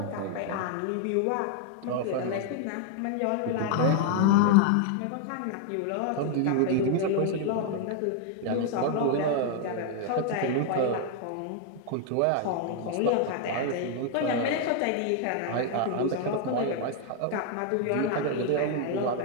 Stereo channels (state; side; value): different; both; correlation 0.00